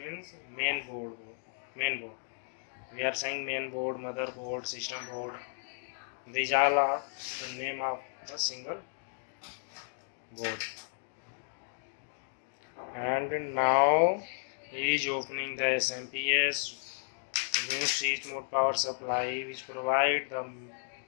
means main board. We are saying main board, motherboard, system board. These all are the name of a single board. And now he is opening the SMPS new switch mode power supply, which provide the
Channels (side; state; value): right; silent; digital silence